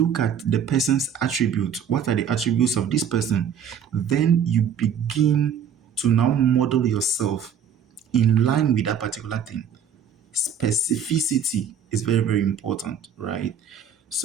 at the person's attributes. What are the attributes of this person? Then you begin to now model yourself in line with that particular thing. Specificity is very, very important, right?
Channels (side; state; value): left; quieter; 7.4 dB